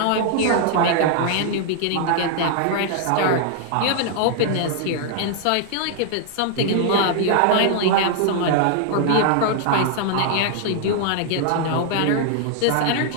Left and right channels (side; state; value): both; different; correlation 0.00